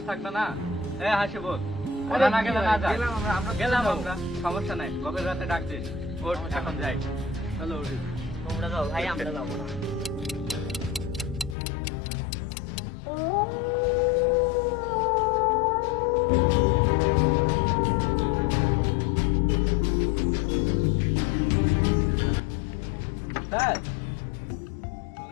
থাকবে না? এ হাসি বল, ওরা না গেলে না যাই। গেলাম আমরা, সমস্যা নাই, গভীর রাতে ডাক দিস। ওঠ এখন যাই। চলো উঠি। তোমরা যাও ভাই, আমরা যাবো না। স্যার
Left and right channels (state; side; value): drops out; right; at 11.6 s